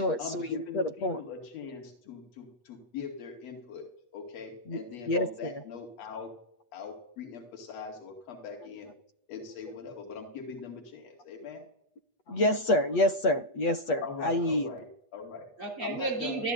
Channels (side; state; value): right; late; 8.3 ms